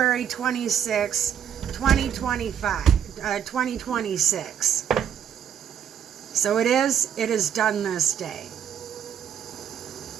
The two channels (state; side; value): quieter; left; 8.9 dB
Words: 26, 2026. So it is done this day.